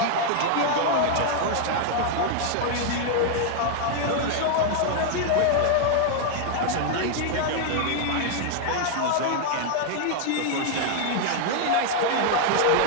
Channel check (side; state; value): both; different; correlation 0.00